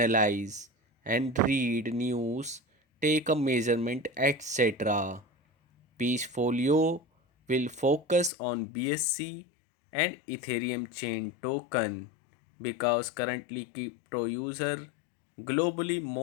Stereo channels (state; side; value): drops out; right; at 8.3 s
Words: and read news, take a measurement, etc. Peachfolio will focus on BSC and Ethereum chain token because currently crypto user globally